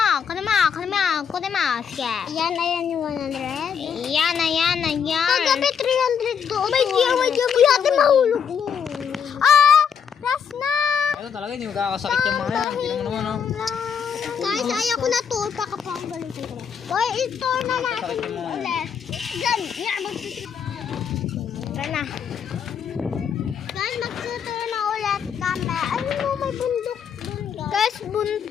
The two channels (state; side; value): quieter; right; 7.3 dB